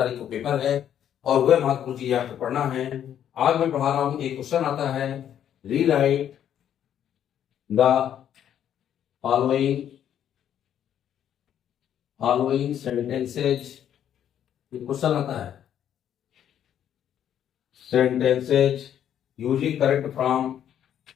को पेपर है और वह महत्वपूर्ण चीजें आपको पढ़ना है। आज मैं पढ़ा रहा हूँ, एक क्वेश्चन आता है, rewrite the following following sentences. Question आता है sentences using correct from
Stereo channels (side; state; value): right; quieter; 9.9 dB